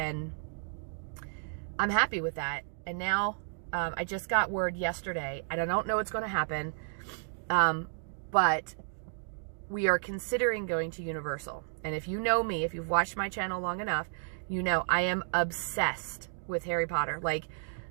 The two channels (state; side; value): silent; left; digital silence